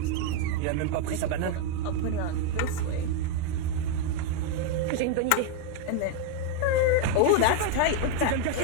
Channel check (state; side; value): different; both; correlation 0.01